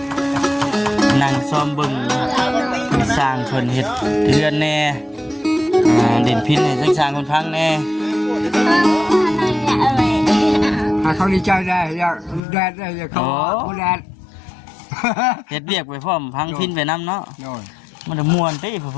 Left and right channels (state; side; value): drops out; right; at 12.4 s